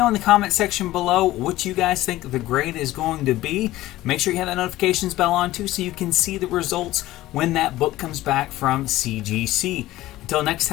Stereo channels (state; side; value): quieter; right; 16.3 dB